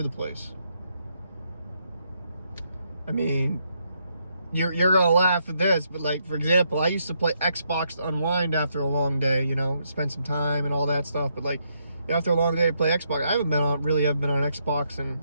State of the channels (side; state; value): both; inverted; correlation -0.76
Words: the place. I mean, you're gonna laugh at this, but like, for example, I used to play Xbox to unwind after a long day, you know, spend some time and all that stuff. But like, after a long day, I play Xbox. I haven't been on Xbox in